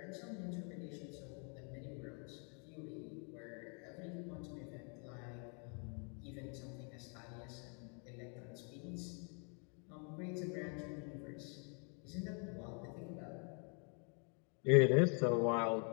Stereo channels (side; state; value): right; quieter; 39.1 dB